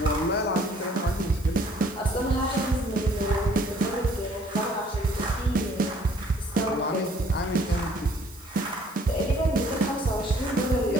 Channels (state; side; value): noise; left; hiss, 22 dB below the sound